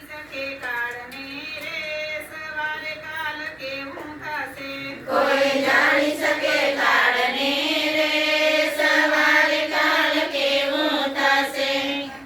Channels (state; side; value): noise; right; hum, 29 dB below the sound